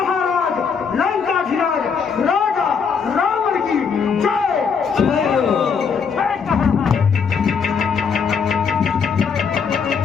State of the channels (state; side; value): quieter; right; 6.1 dB